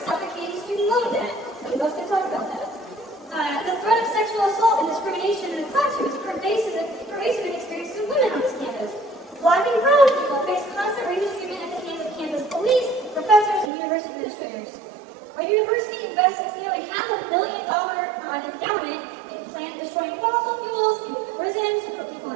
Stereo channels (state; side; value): drops out; left; at 13.7 s